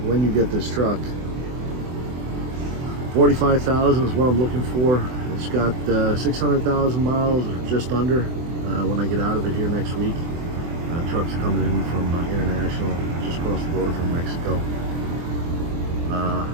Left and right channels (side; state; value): left; late; 24 ms